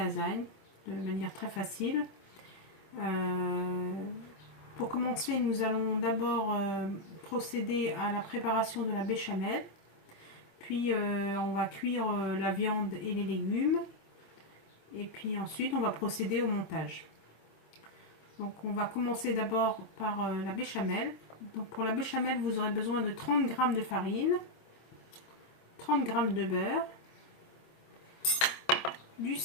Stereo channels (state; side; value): late; right; 25 ms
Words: de manière très facile. Pour commencer, nous allons d'abord procéder à la préparation de la béchamel. Puis on va cuire la viande et les légumes. Et puis ensuite on va procéder au montage. Donc on va commencer d'abord par la béchamel. Donc pour la béchamel, vous aurez besoin de 30 g de farine, 30 g de beurre, du